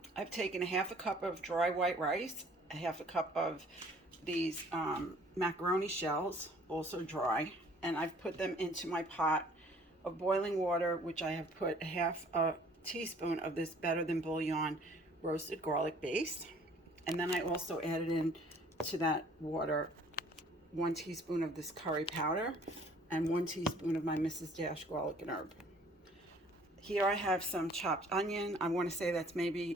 I've taken a half a cup of dry white rice, a half a cup of these macaroni shells, also dry, and I've put them into my pot of boiling water, which I have put a half a teaspoon of this Better Than Bouillon roasted garlic base. And then I also added in to that water 1 teaspoon of this curry powder and 1 teaspoon of my Mrs. Dash garlic and herb. Here I have some chopped onion. I want to say that's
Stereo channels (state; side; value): normal; both; correlation 0.55